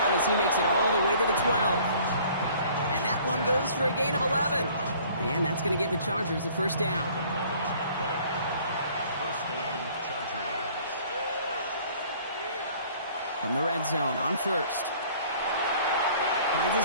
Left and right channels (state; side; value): inverted; both; correlation -0.54